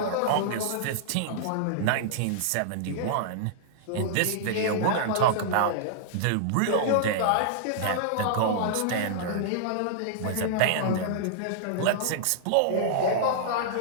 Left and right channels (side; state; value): both; different; correlation -0.02